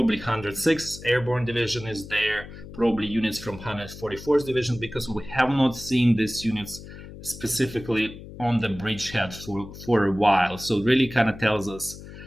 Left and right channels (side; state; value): left; noise; hum, 14 dB below the sound